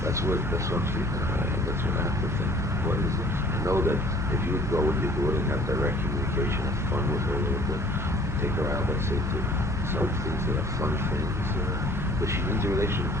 That's what I'm thinking. That's what I have to think. What is it? I know that if you would go with your daughter and have direct communication, have fun with her a little bit, take her out, let's say, to some things that are fun things. But she needs a relationship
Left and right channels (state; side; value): normal; both; correlation 0.53